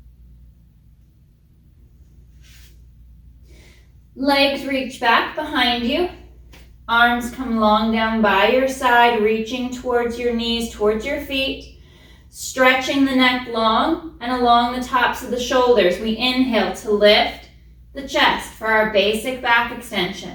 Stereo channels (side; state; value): both; identical; correlation 1.00